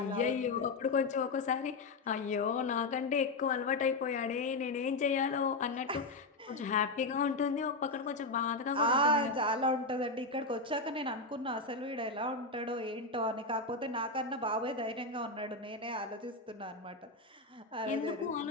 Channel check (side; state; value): right; quieter; 3.3 dB